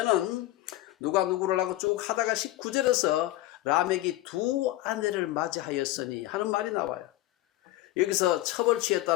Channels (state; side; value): quieter; right; 16.5 dB